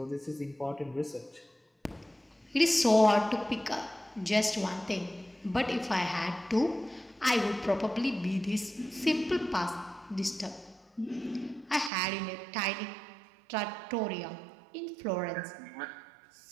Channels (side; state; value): left; drops out; at 11.9 s